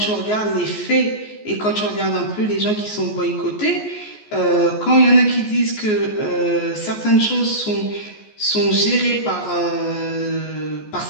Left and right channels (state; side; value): late; right; 14 ms